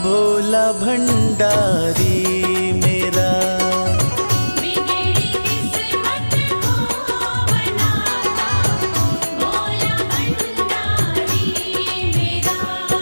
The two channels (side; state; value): both; inverted; correlation -1.00